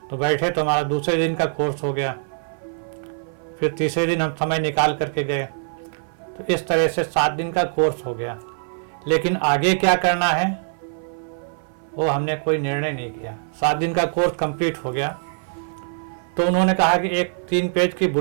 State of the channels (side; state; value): left; silent; 58 dB below the other